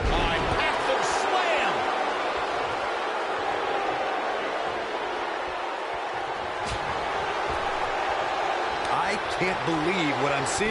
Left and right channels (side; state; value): both; identical; correlation 1.00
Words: Can't believe what I'm